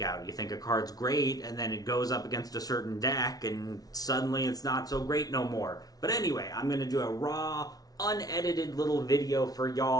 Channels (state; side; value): late; right; 0.18 ms